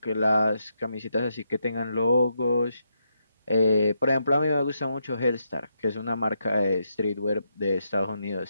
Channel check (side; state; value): both; inverted; correlation -0.81